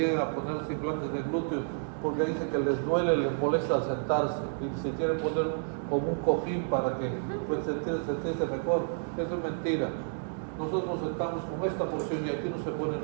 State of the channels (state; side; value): silent; left; digital silence